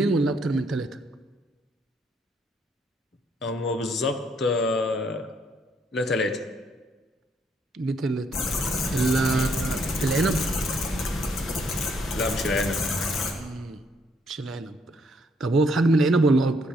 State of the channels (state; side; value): normal; both; correlation 0.70